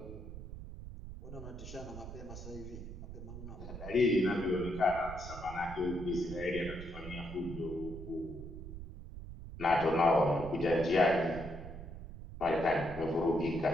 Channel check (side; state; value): right; noise; rumble, 11 dB below the sound